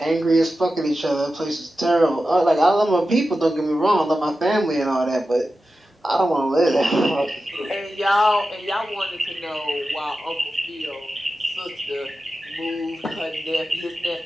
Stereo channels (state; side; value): normal; both; correlation 0.92